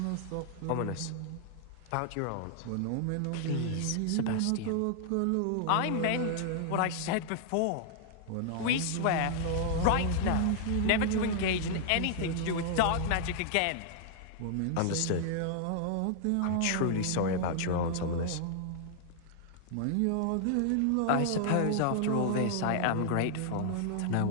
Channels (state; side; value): different; both; correlation 0.00